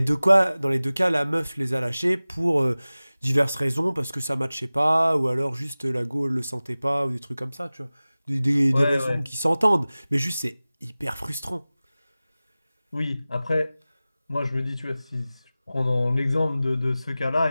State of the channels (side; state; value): both; inverted; correlation -0.98